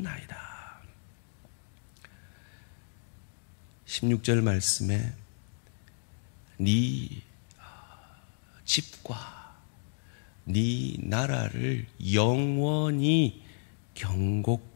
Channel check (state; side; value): silent; right; digital silence